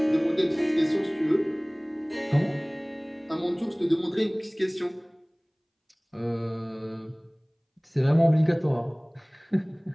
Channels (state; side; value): identical; both; correlation 1.00